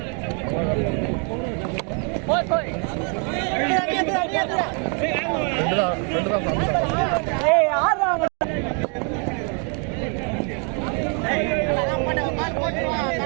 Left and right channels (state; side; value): quieter; left; 38.2 dB